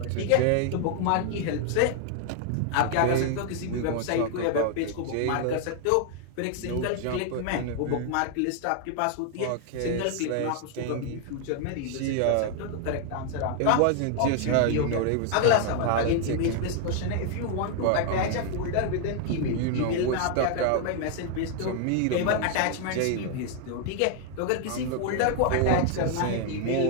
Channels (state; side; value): different; both; correlation 0.00